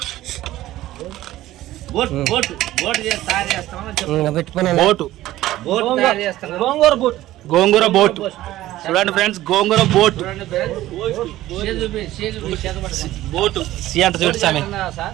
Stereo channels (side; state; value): left; quieter; 15.3 dB